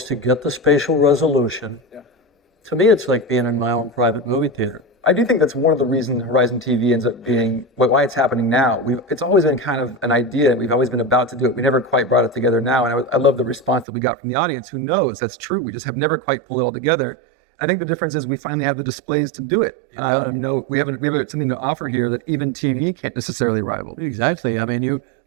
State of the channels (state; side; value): drops out; left; at 13.9 s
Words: to get the spatial resolution, to me, it's like being in my own private movie theater. I do think that's one of the reasons Horizon TV ends up being why it's happening now. It's always been kind of an idea, and we've always been about to do it. We never quite brought it together now, and I love the response that we got from the audience. Who knows? That's true. We just have never quite pulled it all together. I think the difference is we finally have the displays to do it. You know, we have something to offer here that even TV can't necessarily rival. Exactly. I mean, you